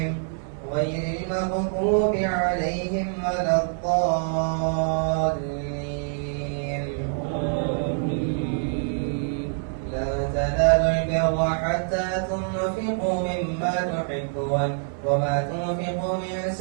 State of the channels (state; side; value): silent; left; 61 dB below the other